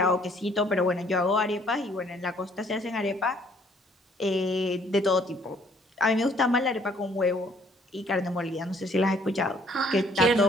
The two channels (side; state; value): both; normal; correlation 0.62